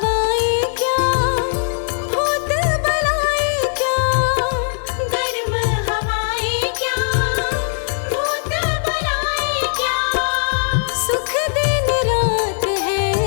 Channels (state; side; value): silent; right; digital silence